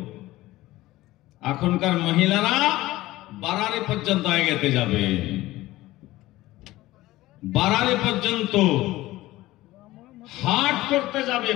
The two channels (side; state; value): right; quieter; 17.4 dB